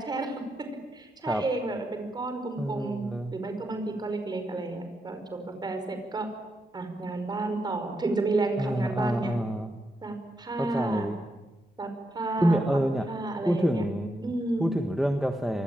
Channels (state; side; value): normal; both; correlation 0.83